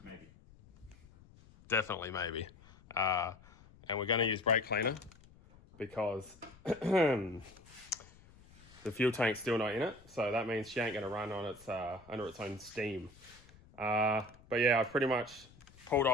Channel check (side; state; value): left; noise; rumble, 24 dB below the sound